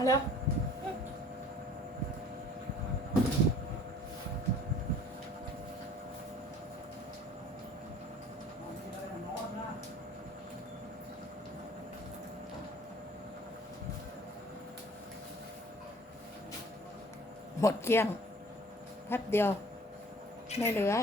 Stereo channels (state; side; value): normal; both; correlation 0.52